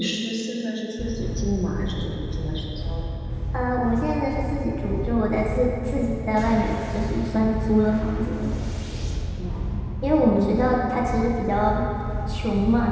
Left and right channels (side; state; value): both; identical; correlation 1.00